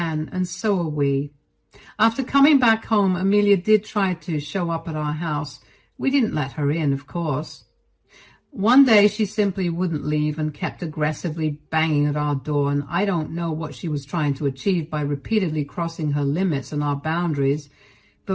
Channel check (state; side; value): identical; both; correlation 1.00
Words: and so are we. After coming back home, Amelia did try to show up at our house. We didn't let her in, of course. One day she simply wouldn't leave and kept aggressively banging at our door, and I don't know what she was trying to achieve by repeatedly crossing her limits and our boundaries,